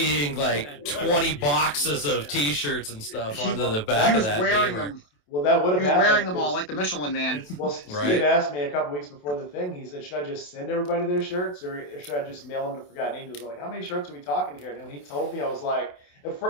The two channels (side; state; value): right; late; 28 ms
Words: like 20 boxes of T-shirts and stuff onto the He back of was that wearing gamer. them. Well, that would He have was happened. wearing them all 'cause- like the Michelin Man. It's, Well, Steve Right. asked me a couple weeks before the thing. He said, "Should I just send everybody their shirts, or should I just mail them to Forgotten Angels?" I'm like, "How many shirts are we talking here?" And when he told me, I was like,